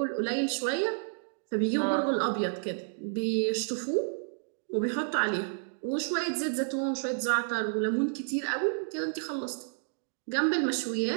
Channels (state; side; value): silent; left; digital silence